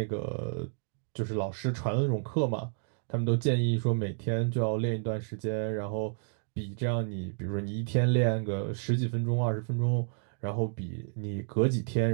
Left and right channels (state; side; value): silent; left; digital silence